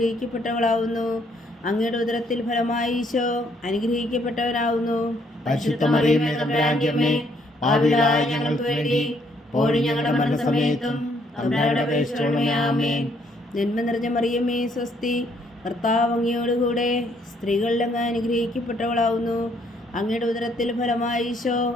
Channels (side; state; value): both; normal; correlation 0.68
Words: അങ്ങയുടെ ഉദരത്തിൽ ഫലമായി ഈശോ അനുഗ്രഹിക്കപ്പെട്ടവനാവുന്നു. പരിശുദ്ധ മറിയമേ തമ്പുരാന്റെ അമ്മേ, പാപികളായ ഞങ്ങൾക്ക് വേണ്ടി ഇപ്പോഴും ഞങ്ങളുടെ മരണസമയത്തും തമ്പുരാനോട് അപേക്ഷിക്കണമേ. ആമേൻ. നന്മ നിറഞ്ഞ മറിയമേ സ്വസ്തി, കർത്താവ് അങ്ങയോടുകൂടെ സ്ത്രീകളിൽ അങ്ങ് അനുഗ്രഹിക്കപ്പെട്ടവളാവുന്നു. അങ്ങയുടെ ഉദരത്തിൽ ഫലമായി ഈശോ